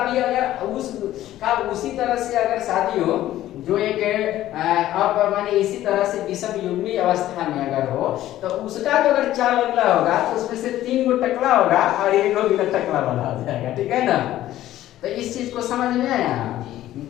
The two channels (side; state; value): right; quieter; 13.8 dB